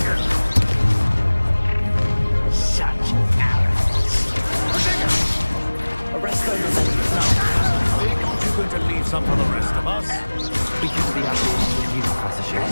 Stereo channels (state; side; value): inverted; both; correlation -1.00